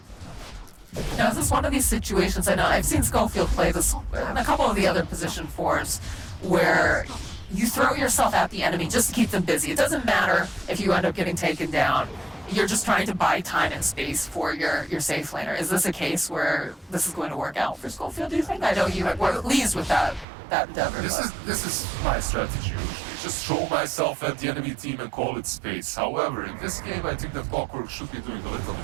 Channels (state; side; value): drops out; left; at 20.2 s